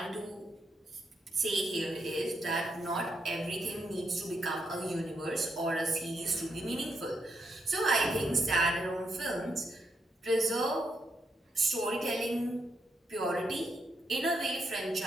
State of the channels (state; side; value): normal; both; correlation 0.80